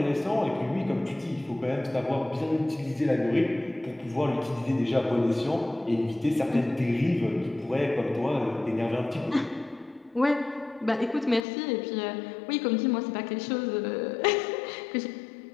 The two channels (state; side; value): drops out; right; at 11.5 s